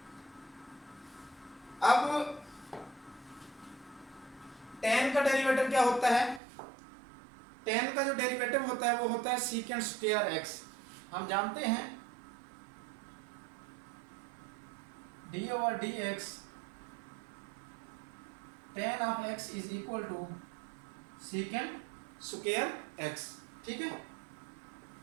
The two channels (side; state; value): left; drops out; at 6.4 s